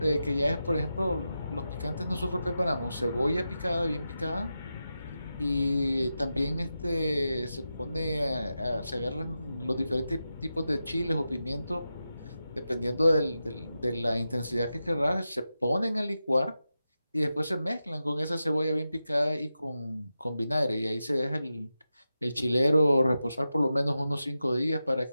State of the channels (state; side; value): inverted; both; correlation -0.90